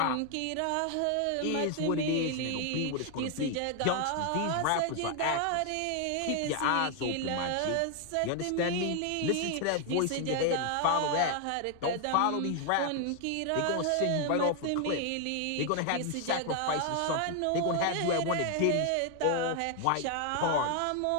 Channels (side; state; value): both; different; correlation 0.00